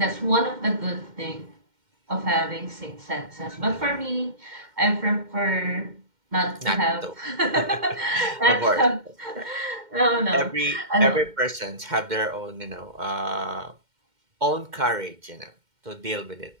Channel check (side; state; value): left; late; 2.1 ms